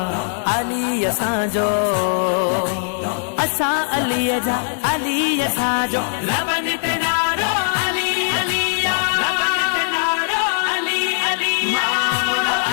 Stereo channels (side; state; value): right; silent; digital silence